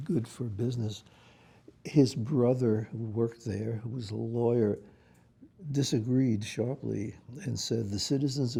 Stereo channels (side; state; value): both; identical; correlation 1.00